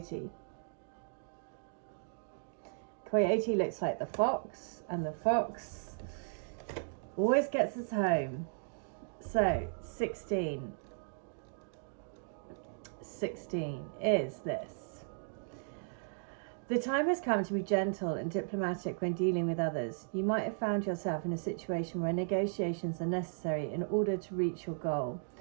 Coyote looks like the fox, and the fox always gets us home. So 16 is this. The time has come to be gentle and diplomatic when dealing with others. You might have found yourself in a situation where negotiations are necessary in order to reach your goal.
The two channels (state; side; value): silent; left; digital silence